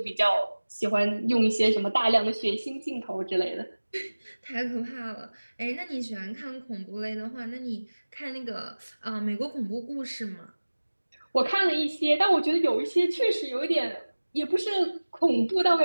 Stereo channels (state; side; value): inverted; both; correlation -1.00